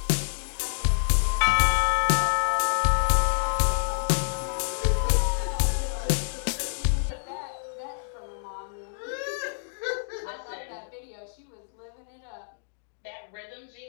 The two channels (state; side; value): silent; right; digital silence